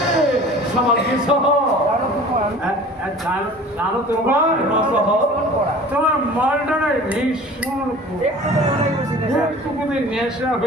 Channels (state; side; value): normal; both; correlation 0.44